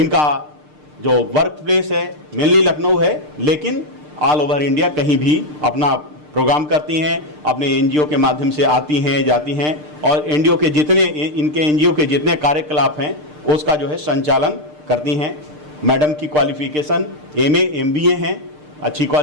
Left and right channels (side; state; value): left; late; 6.7 ms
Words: जो वर्क प्लेस है मेनली लखनऊ है, लेकिन ऑल ओवर इंडिया कहीं भी अपना प्रोग्राम करती हैं, अपने NGO के माध्यम से आती हैं, जाती हैं, और NGO के जितने इनके NGO के जितने कार्यकलाप हैं उसका जो है संचालन करती हैं। मैडम की क्वालिफ़िकेशन MA MBA हैं, अच्छी